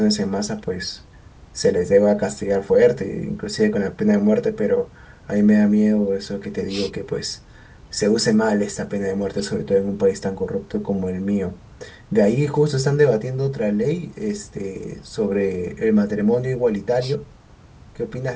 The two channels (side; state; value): both; identical; correlation 1.00